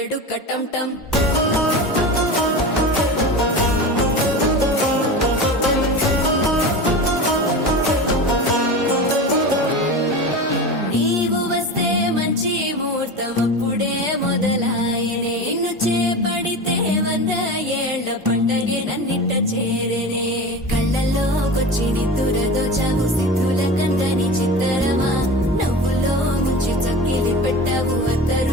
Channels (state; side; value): normal; both; correlation 0.29